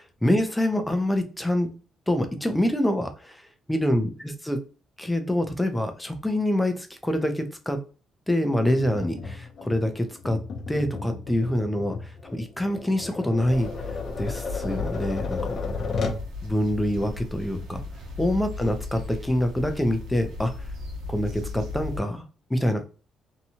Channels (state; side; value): normal; both; correlation 0.90